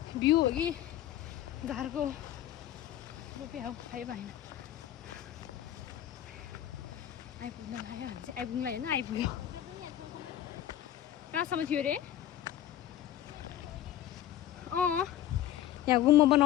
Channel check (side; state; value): right; quieter; 12.0 dB